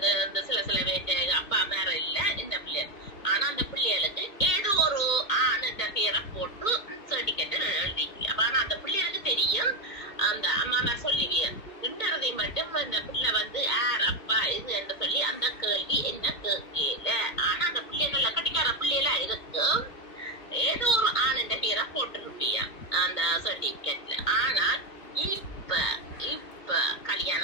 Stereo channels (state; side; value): late; right; 2.5 ms